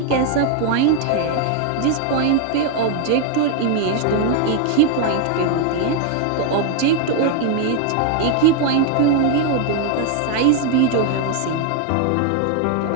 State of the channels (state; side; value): different; both; correlation 0.00